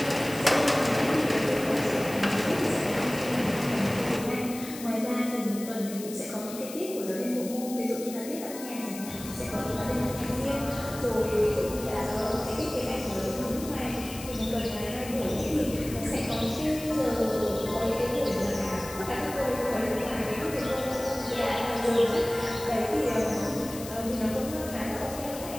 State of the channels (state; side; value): noise; left; hiss, 13 dB below the sound